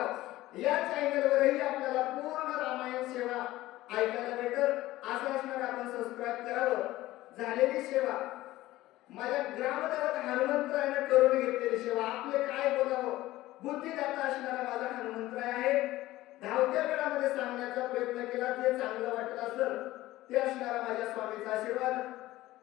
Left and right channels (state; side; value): quieter; right; 16.7 dB